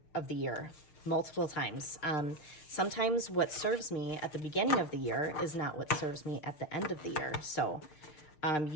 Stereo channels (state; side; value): late; right; 6.6 ms